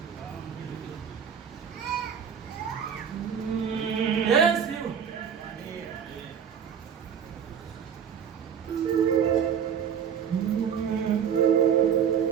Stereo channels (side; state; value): left; quieter; 7.8 dB